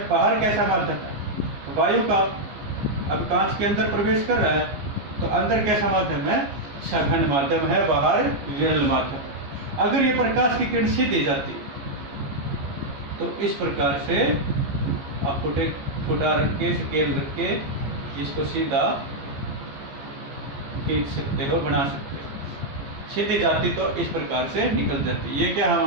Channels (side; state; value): left; late; 15 ms